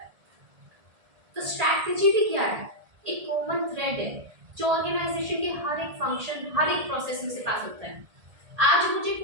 है। तो स्ट्रैटेजी भी क्या है, एक कॉमन थ्रेड है जो ऑर्गेनाइजेशन के हर एक फंक्शन, हर एक प्रोसेस में से पास होता है। आज मुझे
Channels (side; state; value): left; late; 1.7 ms